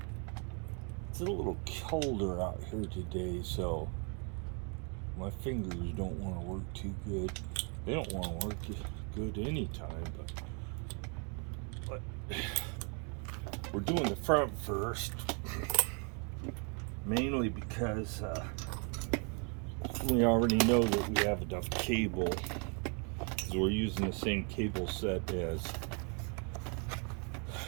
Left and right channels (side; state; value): left; quieter; 37.0 dB